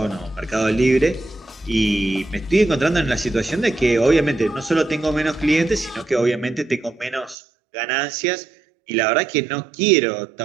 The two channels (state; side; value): drops out; left; at 7.4 s